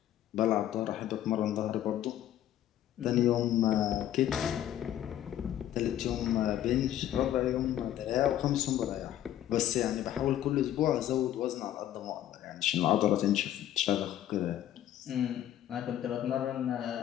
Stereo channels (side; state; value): right; quieter; 11.9 dB